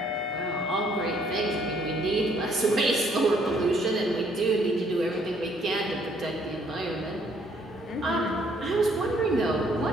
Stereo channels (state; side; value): normal; both; correlation 0.65